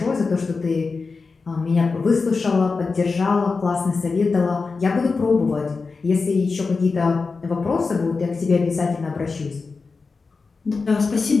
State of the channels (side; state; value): right; quieter; 4.4 dB